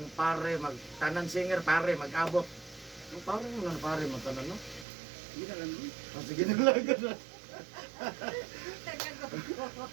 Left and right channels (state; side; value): drops out; left; at 4.9 s